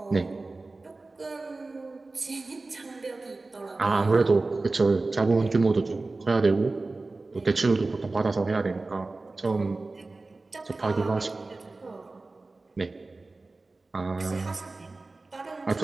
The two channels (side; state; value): left; quieter; 3.4 dB